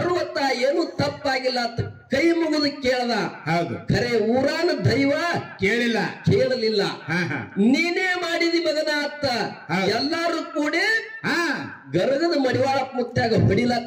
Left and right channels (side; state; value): both; identical; correlation 1.00